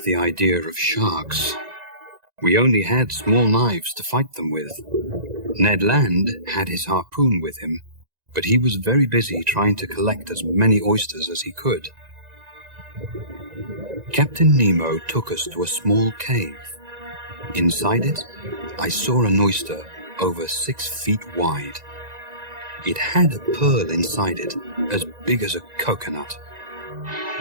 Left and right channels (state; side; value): late; left; 1.9 ms